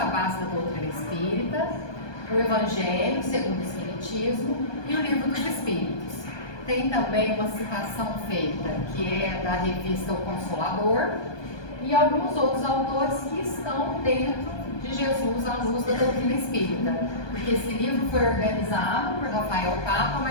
base da doutrina espírita, o Evangelho segundo o Espiritismo e o Livro dos Espíritos. Tem também uma citação feita, que é da revista O Consolador, e alguns outros autores que estão dentro de Jesus à luz da doutrina espírita, porque esse livro foi organizado por Rafael Papa,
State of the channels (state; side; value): late; right; 1.2 ms